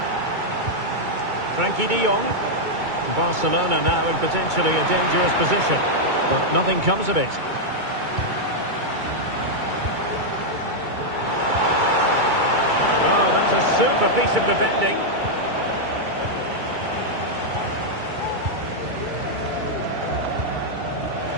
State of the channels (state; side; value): late; left; 2.3 ms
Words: Frenkie de Jong. Barcelona now in potentially a dangerous position, but nothing comes of it. Oh, that's a super piece of defending.